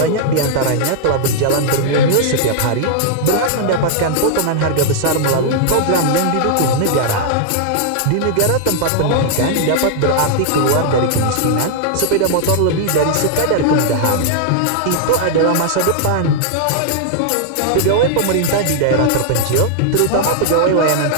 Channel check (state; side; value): different; both; correlation -0.01